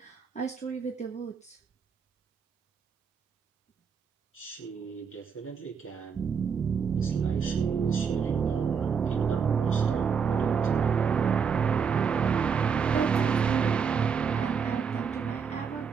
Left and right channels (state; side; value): quieter; left; 6.4 dB